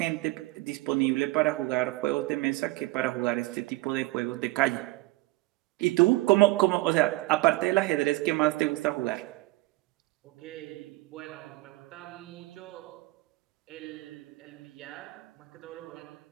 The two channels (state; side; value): quieter; left; 21.2 dB